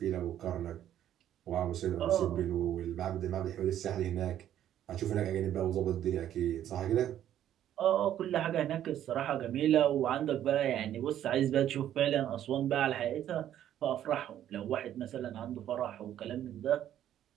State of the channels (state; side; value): quieter; left; 11.3 dB